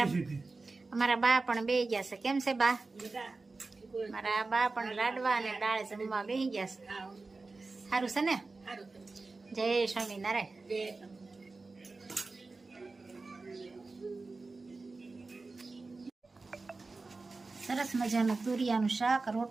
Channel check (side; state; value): left; quieter; 3.7 dB